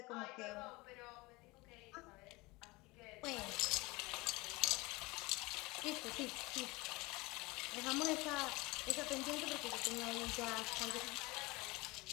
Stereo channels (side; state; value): right; quieter; 22.5 dB